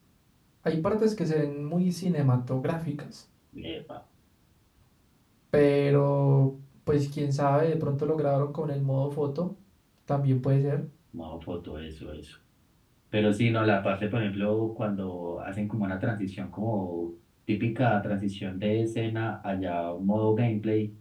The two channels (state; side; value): identical; both; correlation 1.00